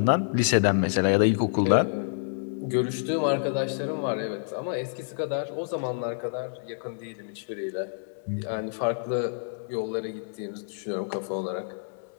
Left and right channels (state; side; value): silent; right; digital silence